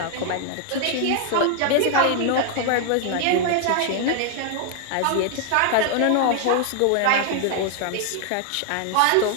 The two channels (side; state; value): both; different; correlation 0.00